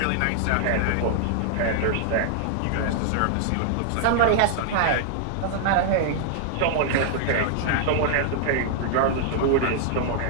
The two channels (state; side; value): different; both; correlation -0.01